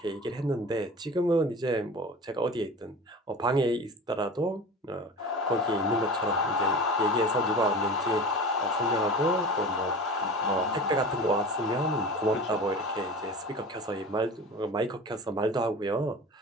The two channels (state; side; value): normal; both; correlation 0.35